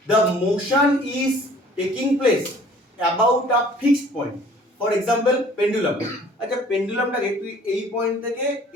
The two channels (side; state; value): both; normal; correlation 0.53